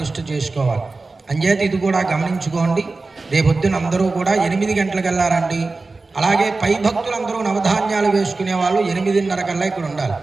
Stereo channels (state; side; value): quieter; left; 3.6 dB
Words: చేసుకోవాలి. అంచేత ఇది కూడా గమనించుకోండి. రేపొద్దున అందరూ కూడా 8 గంటలకు వెళ్ళారండి. అలాగే పై భక్తులందరూ నవధాన్యాలు వేసుకునే వాళ్ళు 8:30 కల్లా ఇక్కడ ఉండాలి.